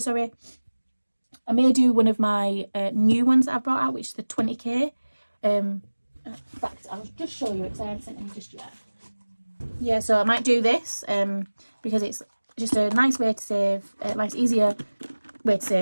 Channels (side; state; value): both; inverted; correlation -1.00